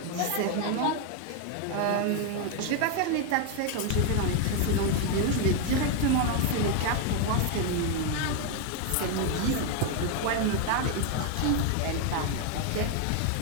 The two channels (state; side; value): different; both; correlation 0.01